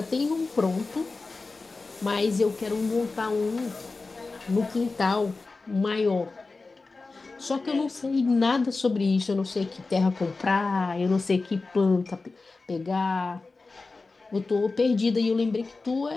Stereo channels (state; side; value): quieter; right; 3.8 dB